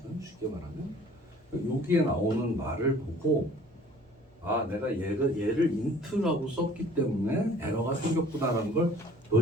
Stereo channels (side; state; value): both; normal; correlation 0.51